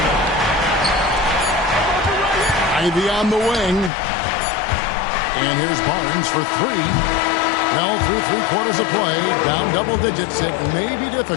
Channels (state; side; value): drops out; right; at 3.9 s